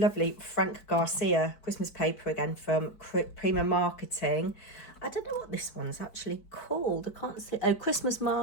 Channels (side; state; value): right; late; 4.6 ms